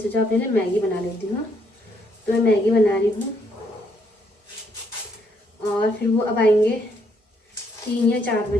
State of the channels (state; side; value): normal; both; correlation 0.72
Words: अपने लिए मैगी बना लेती हूँ। तो मैं मैगी बना रही हूँ, और फिर वो अब आएंगे 3 या 4